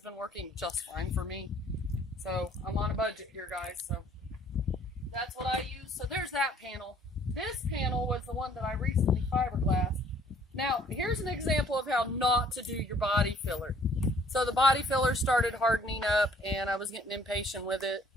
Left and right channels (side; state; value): both; normal; correlation 0.59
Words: working just fine for me. So I'm on a budget here, guys. So that's what I use. So there's that panel. This panel was the one that I recently fiberglassed. Now, here's an example of how not to do your body filler. So the body filler started hardening up, and I was getting impatient with it.